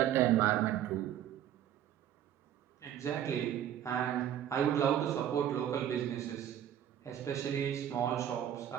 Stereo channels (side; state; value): left; quieter; 10.5 dB